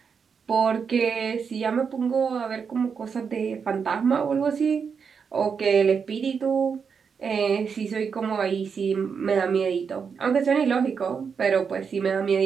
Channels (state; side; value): quieter; left; 6.2 dB